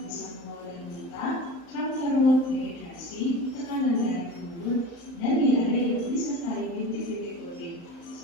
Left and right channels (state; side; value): late; right; 35 ms